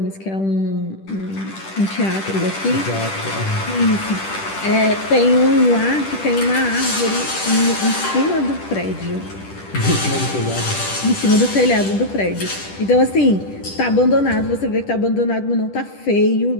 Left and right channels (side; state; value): right; late; 10 ms